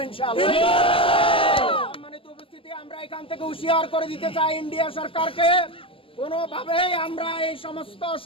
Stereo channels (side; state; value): right; late; 0.26 ms